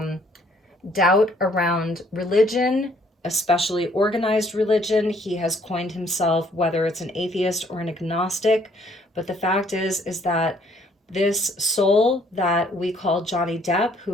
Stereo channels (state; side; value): normal; both; correlation 0.64